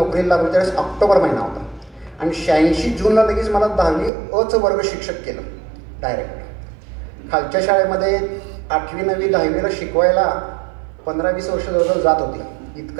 लागलो, त्यावेळेस ऑक्टोबर महिना होता. आणि 86 जूनला लगेच मला 10वी अ वर्ग शिक्षक केलं डायरेक्ट. खालच्या शाळेमध्ये 8वी 9वी 10वीला शिकवायला 15-20 वर्ष जवळजवळ जात होती.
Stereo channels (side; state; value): left; drops out; at 4.1 s